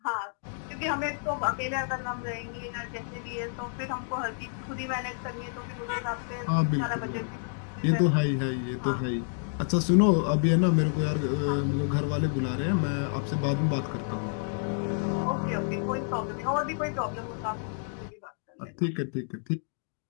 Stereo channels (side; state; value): right; silent; digital silence